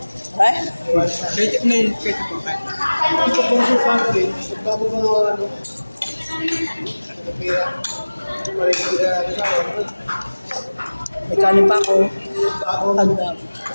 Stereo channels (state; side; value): inverted; both; correlation -1.00